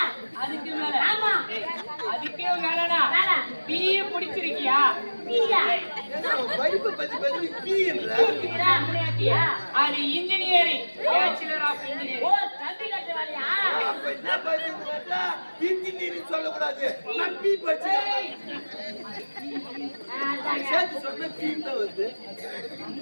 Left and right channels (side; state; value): both; inverted; correlation -1.00